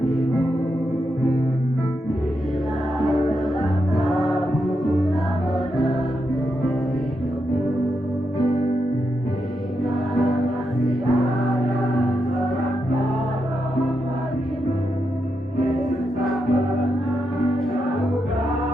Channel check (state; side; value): normal; both; correlation 0.84